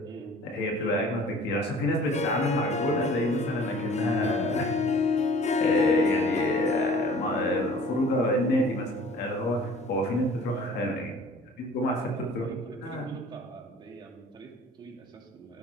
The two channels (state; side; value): normal; both; correlation 0.49